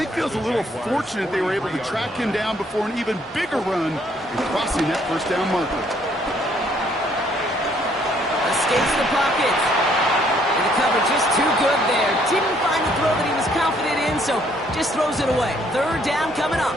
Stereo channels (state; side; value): normal; both; correlation 0.66